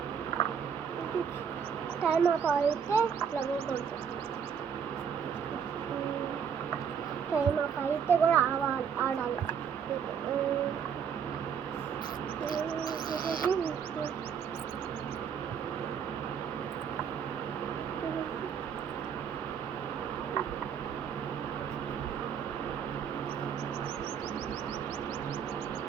Time of అయితే time of అయితే కూడా ఆడాలి.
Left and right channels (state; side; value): quieter; left; 7.4 dB